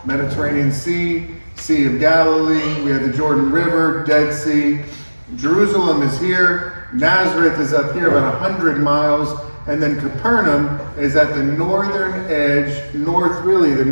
Mediterranean Sea, Sea of Galilee. We have the Jordan River, Dead Sea. Jerusalem is here. Nazareth is up here about 100 miles. And then Capernaum is at the northern edge, the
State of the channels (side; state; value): both; inverted; correlation -1.00